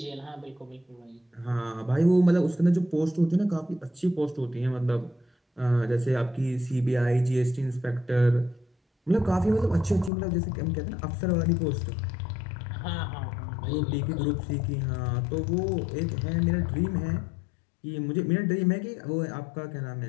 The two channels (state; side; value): drops out; right; at 10.1 s